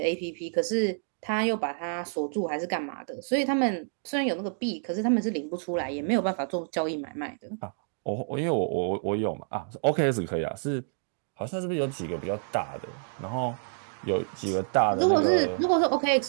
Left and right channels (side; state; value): left; silent; digital silence